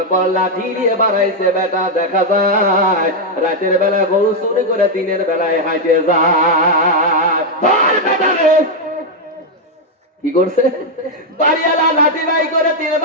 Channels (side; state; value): both; normal; correlation 0.01